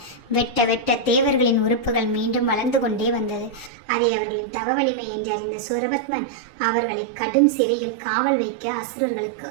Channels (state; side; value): drops out; left; at 3.7 s